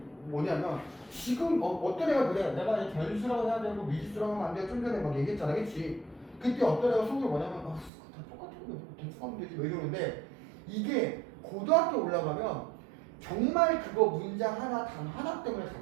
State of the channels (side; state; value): left; drops out; at 7.9 s